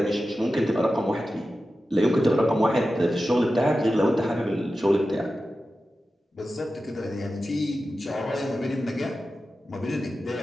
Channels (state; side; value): normal; both; correlation 0.93